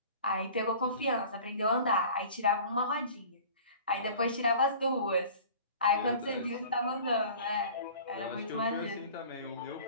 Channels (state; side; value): inverted; both; correlation -0.44